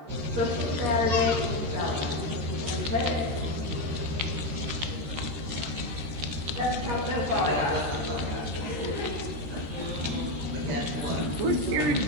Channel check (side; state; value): left; late; 13 ms